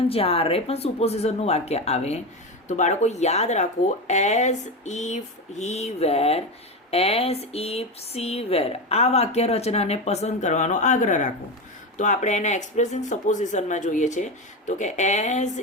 જ્યારે પણ સુપોઝિશનનું વાક્ય આવે તો બાળકો યાદ રાખો as if he were, as if she were, આ વાક્ય રચનાને પસંદ કરવાનો આગ્રહ રાખો. તો આપણે એને એક્સપ્રેસિંગ સપોઝિશનમાં જોઈએ છે, તો કે એઝ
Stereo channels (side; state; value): both; normal; correlation 0.18